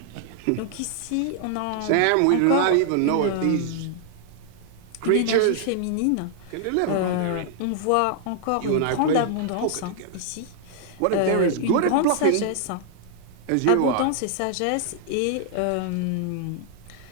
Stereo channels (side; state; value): both; different; correlation -0.01